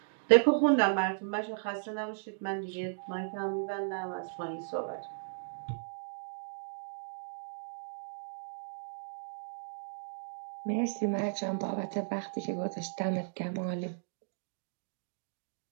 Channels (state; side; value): silent; left; digital silence